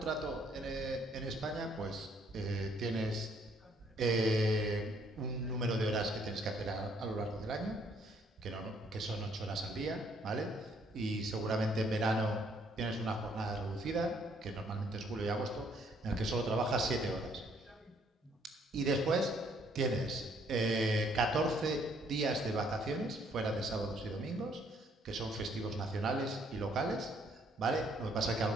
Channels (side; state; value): both; normal; correlation 0.66